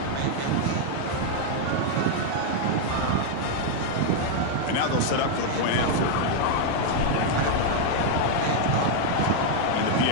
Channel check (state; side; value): different; both; correlation 0.00